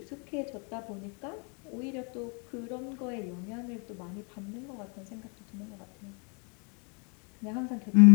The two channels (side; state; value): right; quieter; 35.6 dB